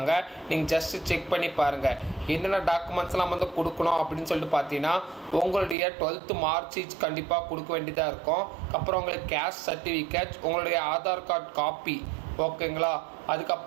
நீங்கள் ஜஸ்ட்டு செக் பண்ணி பாருங்கள். என்னென்ன டாக்குமெண்ட்ஸ்லாம் கொடுக்கணும் அப்படின்னு சொல்லிட்டு பார்த்தீங்கன்னா உங்களுடைய 12th மார்க் ஷீட் கண்டிப்பாக கொடுக்க வேண்டியதாக இருக்கும். அப்புறம் உங்களுக்கு கேஸ்ட் சர்டிஃபிகேட், உங்களுடைய ஆதார் கார்டு காப்பி. ஓகேங்களா?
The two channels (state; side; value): drops out; left; at 5.8 s